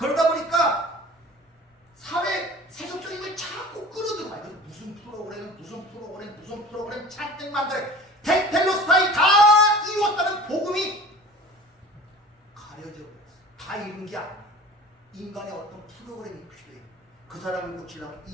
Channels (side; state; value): both; normal; correlation 0.41